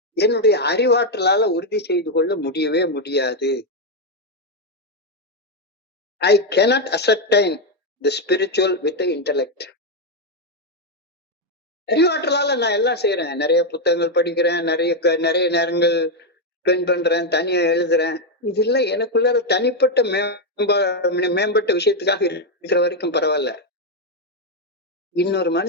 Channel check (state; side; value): normal; both; correlation 0.03